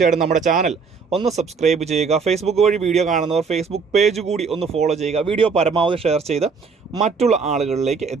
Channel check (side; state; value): left; quieter; 5.3 dB